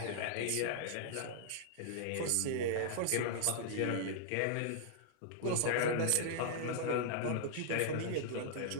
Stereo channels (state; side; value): different; both; correlation -0.01